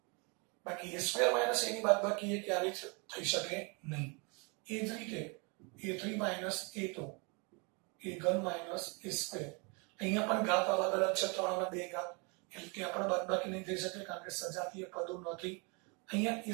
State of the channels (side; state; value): left; quieter; 32.1 dB